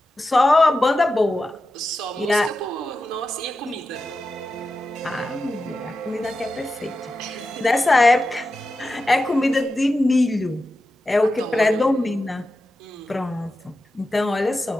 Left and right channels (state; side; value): normal; both; correlation 0.91